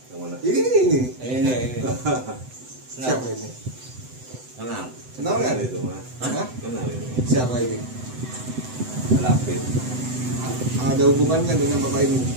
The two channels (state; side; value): late; left; 7.9 ms